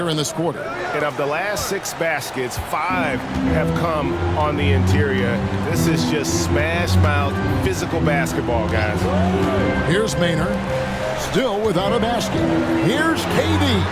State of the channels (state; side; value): identical; both; correlation 1.00